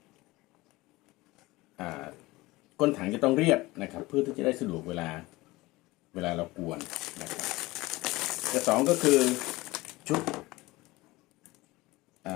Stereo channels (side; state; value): right; quieter; 20.5 dB